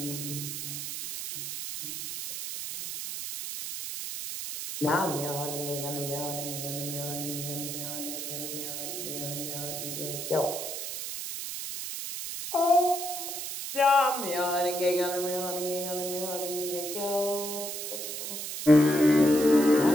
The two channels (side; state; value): right; noise; hiss, 6 dB below the sound